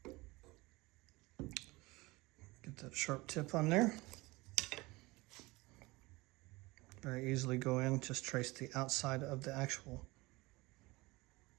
Get that sharp tip on there. Very easily go in, just trace the outside of the actual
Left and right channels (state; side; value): quieter; left; 22.2 dB